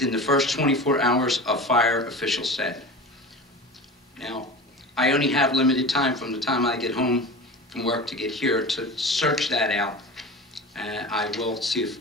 the first 24 hours of fire, officials said. Now, I only have limited time from the time I get home from work to get here to search that out. I will see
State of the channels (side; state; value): both; normal; correlation 0.32